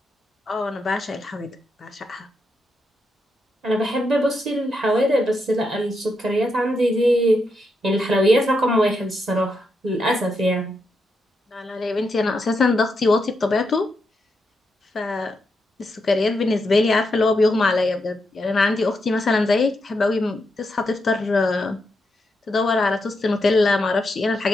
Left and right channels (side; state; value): both; normal; correlation 0.83